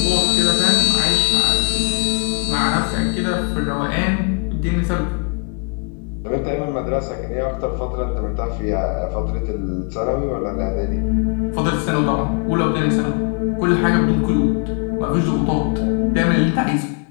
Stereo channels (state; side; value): quieter; right; 38.0 dB